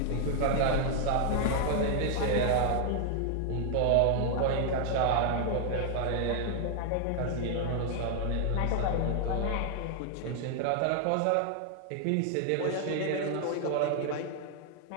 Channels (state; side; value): different; both; correlation 0.00